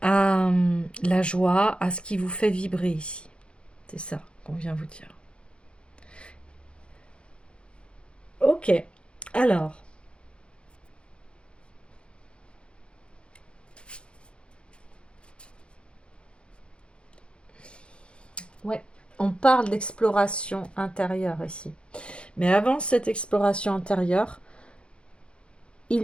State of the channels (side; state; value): right; late; 0.057 ms